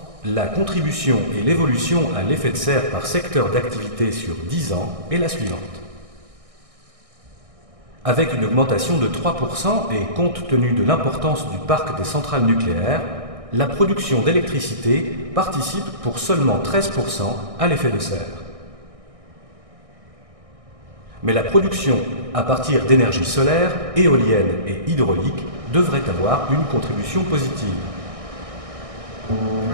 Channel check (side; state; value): left; late; 1.6 ms